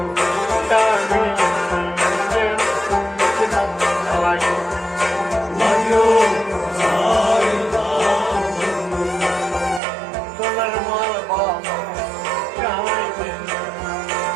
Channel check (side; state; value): left; drops out; at 9.8 s